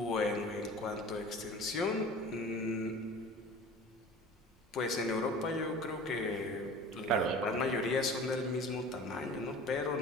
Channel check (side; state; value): both; normal; correlation 0.40